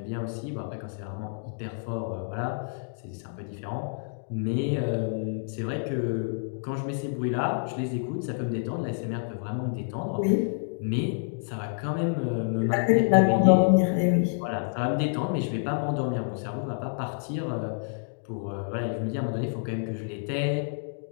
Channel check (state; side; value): silent; right; digital silence